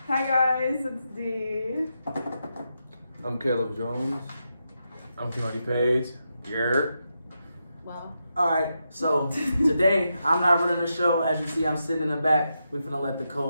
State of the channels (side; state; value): both; inverted; correlation -0.86